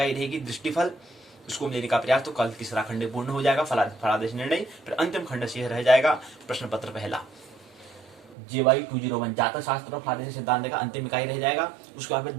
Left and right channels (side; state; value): left; drops out; at 8.3 s